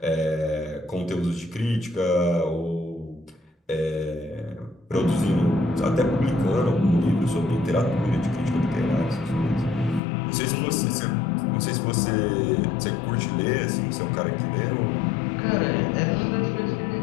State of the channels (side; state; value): right; drops out; at 10.0 s